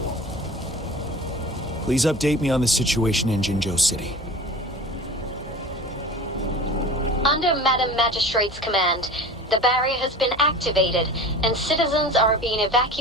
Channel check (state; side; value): normal; both; correlation 0.36